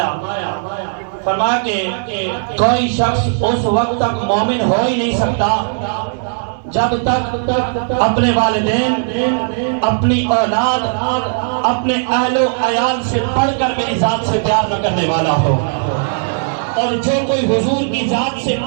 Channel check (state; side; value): silent; left; digital silence